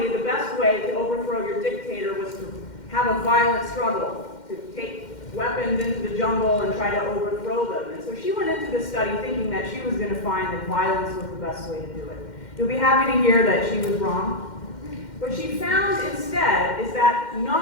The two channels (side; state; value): right; late; 2.1 ms